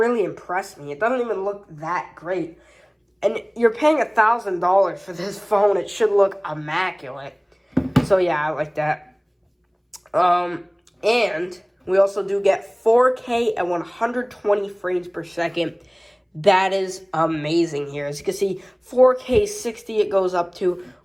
impress me. It doesn't even look that great. And you're paying $1,000 for this phone. It should look immaculate. So yeah, I like that. And we also do get 4K at 120 frames per second. That is amazing here. As you can see, 4K 60 it goes up to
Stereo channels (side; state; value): both; identical; correlation 1.00